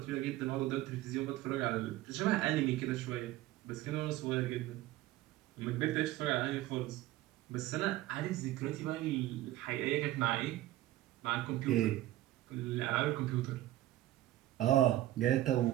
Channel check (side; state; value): left; quieter; 15.1 dB